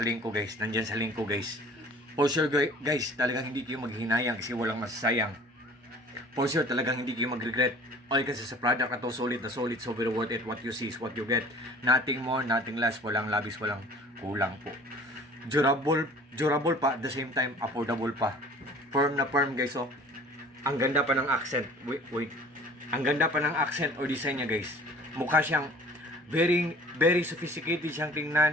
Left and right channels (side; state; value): both; normal; correlation 0.48